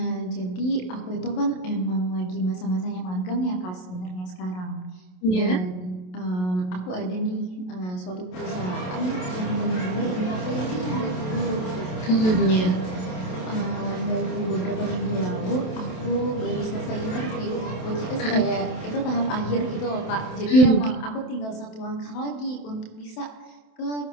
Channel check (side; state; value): right; late; 27 ms